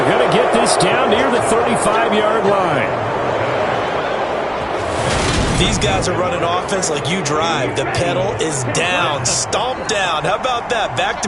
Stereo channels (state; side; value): identical; both; correlation 1.00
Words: going to get this down near the 35-yard line. These guys are running offense like you drive. The pedal is down, stomped down. How about that?